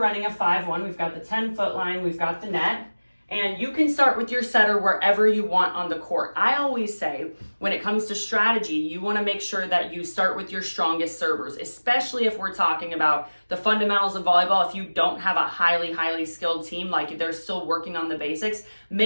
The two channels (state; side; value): inverted; both; correlation -1.00